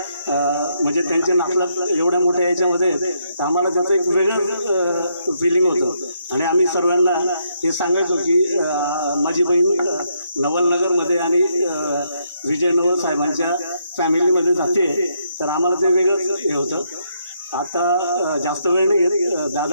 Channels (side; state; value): both; inverted; correlation -0.76